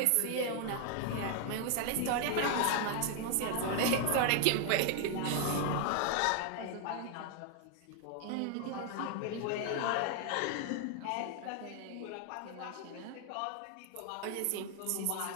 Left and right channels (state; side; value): different; both; correlation 0.00